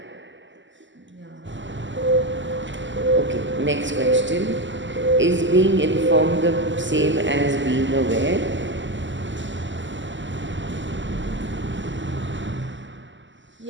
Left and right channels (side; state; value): left; late; 0.54 ms